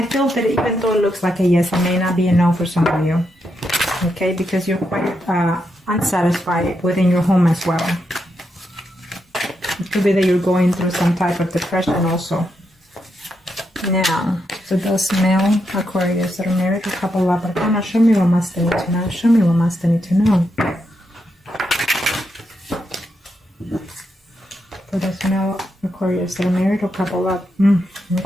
feel that even though it looks like a yes, it may not be a no for some of you. Okay, because you're quite unsatisfied within your home as well. It could be that you're going through some type of depression also. Now, for those male Aquarius that are married or couple up, show me what must they need to know. Show me what must they need to know. For those male Aquarius that are married or couple up.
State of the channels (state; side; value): normal; both; correlation 0.83